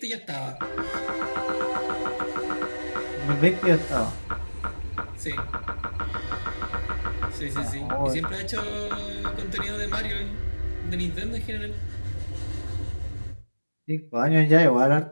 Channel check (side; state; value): both; inverted; correlation -1.00